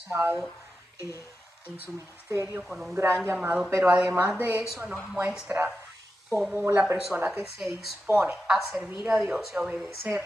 en su ministerio con un gran llamado, pero además de eso nos muestra cómo la persona que se dispone a servir a Dios y a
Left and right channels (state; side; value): normal; both; correlation 0.90